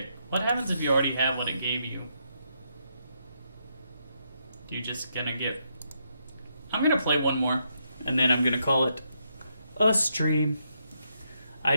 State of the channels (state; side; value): inverted; both; correlation -0.78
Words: What happens if you already have what it gave you? You just gonna get... I'm gonna play one more, and then I'm gonna call it a stream. I